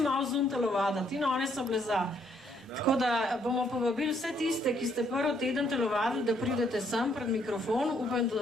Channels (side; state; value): both; normal; correlation 0.70